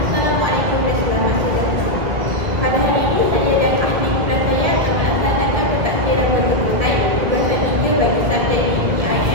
dan selamat sejahtera. Pada hari ini saya dan ahli kelas saya akan melaksanakan pentadbiran bertubuhan tugasan 3 bagi subjek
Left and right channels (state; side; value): late; left; 2.0 ms